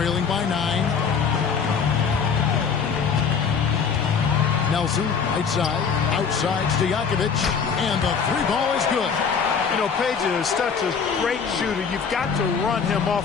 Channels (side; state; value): right; quieter; 6.2 dB